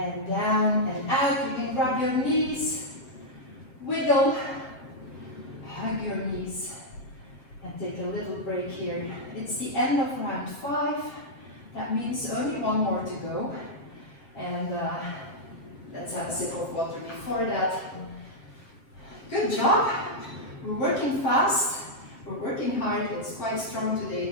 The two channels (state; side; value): late; right; 7.6 ms